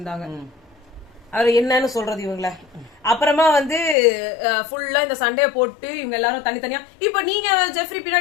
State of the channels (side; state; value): right; drops out; at 4.0 s